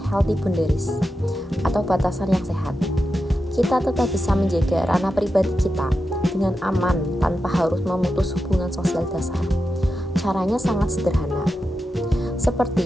healthy boundaries atau batasan yang sehat. Kita tetap bisa menjaga ranah pribadi kita dengan aman tanpa harus memutus hubungan sosial dasar. Caranya sangat sederhana.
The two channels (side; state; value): both; normal; correlation 0.89